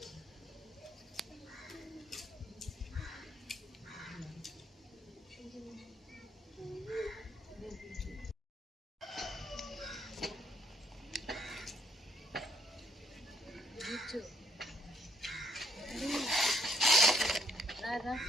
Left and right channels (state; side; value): normal; both; correlation 0.67